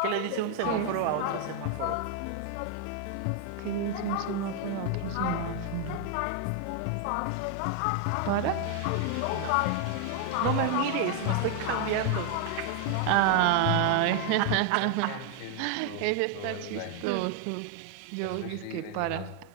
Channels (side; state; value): both; different; correlation 0.00